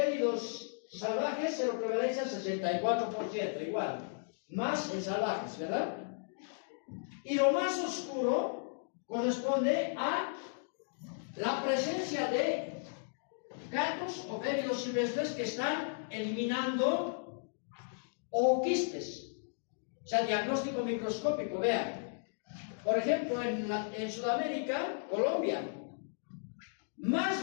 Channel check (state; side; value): silent; right; digital silence